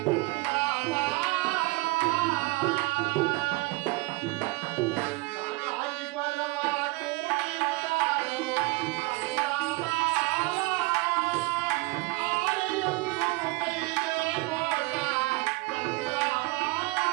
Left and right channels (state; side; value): quieter; left; 24.1 dB